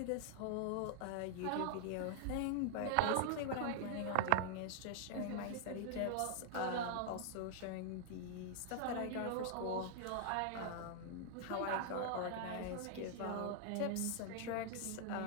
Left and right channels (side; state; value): both; different; correlation 0.00